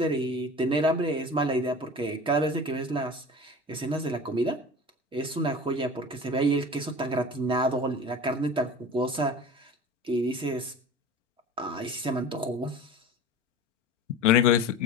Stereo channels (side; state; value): both; normal; correlation 0.37